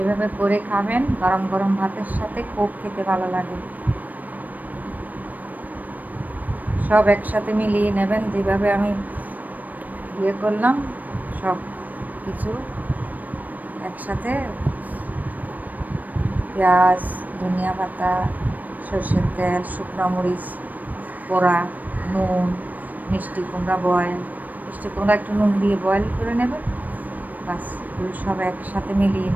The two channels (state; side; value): late; left; 0.082 ms